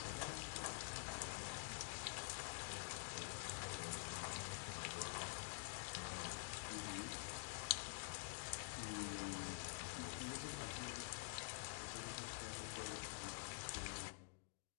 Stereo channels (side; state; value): right; silent; digital silence